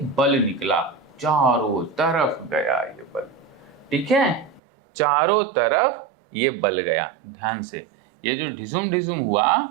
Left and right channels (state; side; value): drops out; left; at 4.6 s